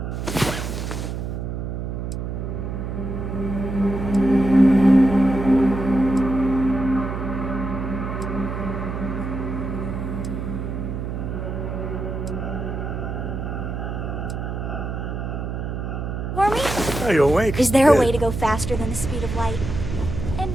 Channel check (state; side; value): noise; right; hum, 4 dB below the sound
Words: For me? Are you awake? Is there a way to go faster than the speed of light?